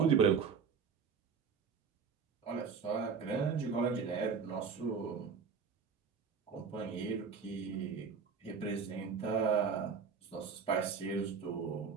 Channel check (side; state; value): left; quieter; 6.0 dB